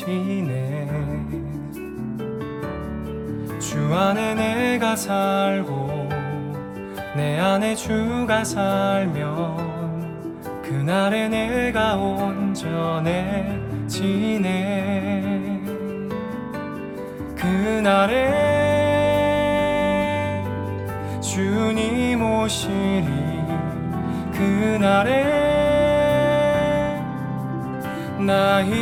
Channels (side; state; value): both; identical; correlation 1.00